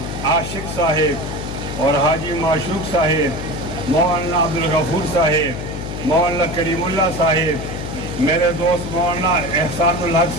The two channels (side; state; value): left; noise; hum, 7 dB below the sound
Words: عاشق صاحب اور حاجی معشوق صاحب، مولانا عبدالغفور صاحب، مولانا کریم اللہ صاحب، میرے دوست مولانا احسان الحق